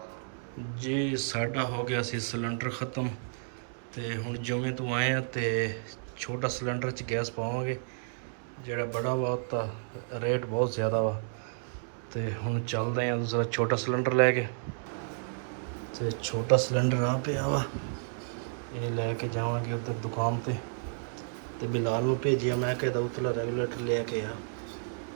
ਜੀ ਸਾਡਾ ਹੋ ਗਿਆ ਸੀ ਸਿਲੰਡਰ ਖ਼ਤਮ ਤੇ ਹੁਣ ਜੁਮੇ ਤੋਂ ਆਏ ਆ ਤੇ ਛੋਟਾ ਸਿਲੰਡਰ 'ਚ ਗੈਸ ਪਾਵਾਂਗੇ। ਜਿਹੜਾ ਬੜਾ ਵਾ ਤਾਂ ਰੇਟ ਬਹੁਤ ਜ਼ਿਆਦਾ ਵਾ ਤੇ ਹੁਣ ਚੱਲਦੇ ਆ ਦੂਸਰਾ ਛੋਟਾ ਸਿਲੰਡਰ ਲੈ ਕੇ। ਤੇ ਛੋਟਾ ਸਿਲੰਡਰ ਆ ਪਿਆ ਵਾ, ਇਹ ਲੈ ਕੇ ਜਾਵਾਂਗੇ ਉੱਧਰ ਦੁਕਾਨ ਤੇ ਬਿਲਾਲ ਨੂੰ ਭੇਜਿਆ, ਮੈਂ ਕਹਿੰਦਾ ਉਤਲਾ ਰੈਗੂਲੇਟਰ ਲੈ ਕੇ ਆ।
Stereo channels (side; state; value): left; silent; digital silence